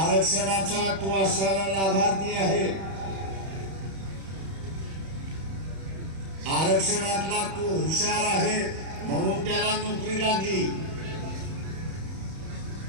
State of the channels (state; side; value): late; left; 31 ms